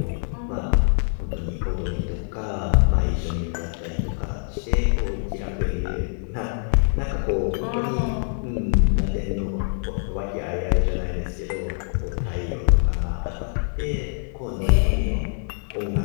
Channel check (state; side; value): silent; right; 62 dB below the other